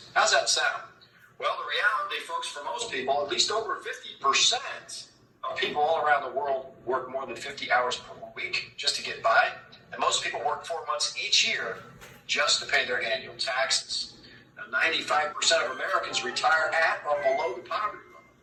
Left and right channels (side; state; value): both; identical; correlation 1.00